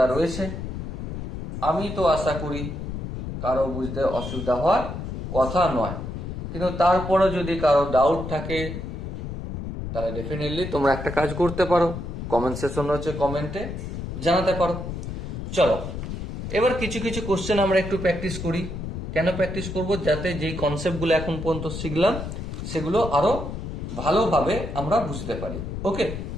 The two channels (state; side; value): noise; left; rumble, 6 dB below the sound